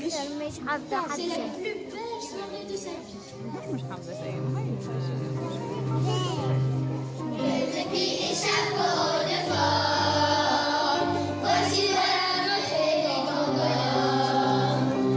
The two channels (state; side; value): identical; both; correlation 1.00